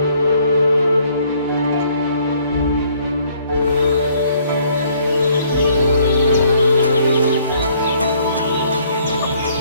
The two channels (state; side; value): inverted; both; correlation -0.63